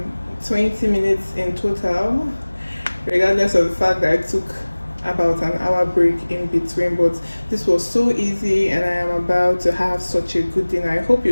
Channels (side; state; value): both; inverted; correlation -1.00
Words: 20 minutes in total, regardless of the fact that I took about an hour break in between. But this was so easy, and I am about to have such a good dinner. I hope